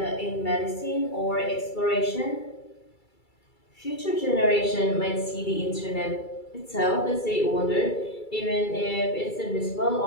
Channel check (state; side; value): late; right; 2.3 ms